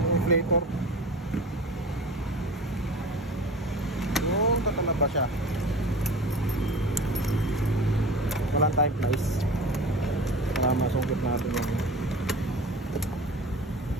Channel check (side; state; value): both; normal; correlation 0.36